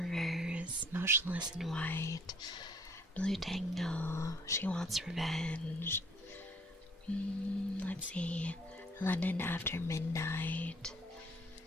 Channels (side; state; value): both; normal; correlation 0.60